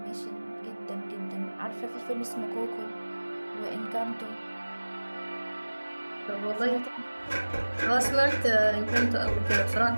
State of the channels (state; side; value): inverted; both; correlation -1.00